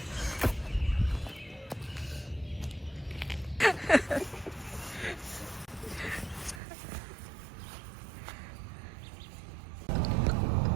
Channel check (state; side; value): drops out; left; at 6.6 s